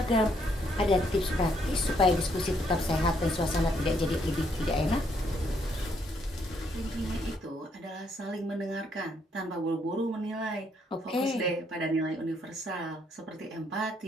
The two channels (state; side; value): normal; both; correlation 0.71